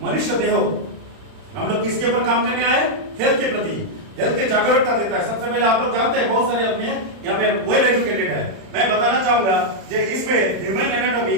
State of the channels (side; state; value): left; late; 31 ms